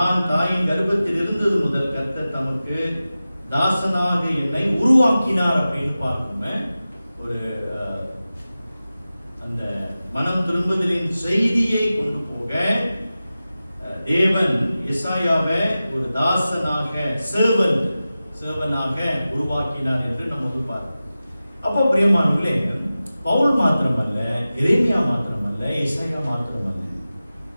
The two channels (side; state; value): both; inverted; correlation -0.95